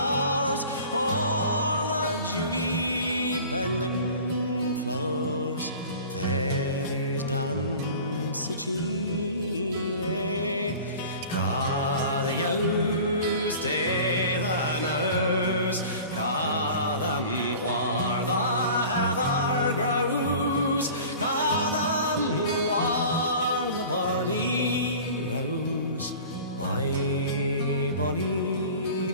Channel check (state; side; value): inverted; both; correlation -0.41